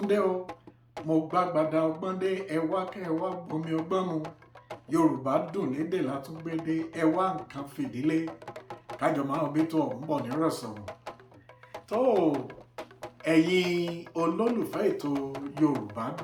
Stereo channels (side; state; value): both; identical; correlation 1.00